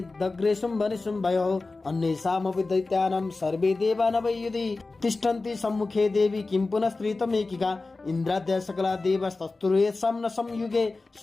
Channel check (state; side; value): quieter; right; 3.5 dB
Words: दग्रे शुम्भनिशुम्भयोः अन्येषामपि दैत्यानां सर्वे देवा न वै युधि तिष्ठन्ति सम्मुखे देवी किं पुनः स्त्रीतमेकिका इन्द्राद्या सकला देवस्तस्तुर्येषां न संयुगे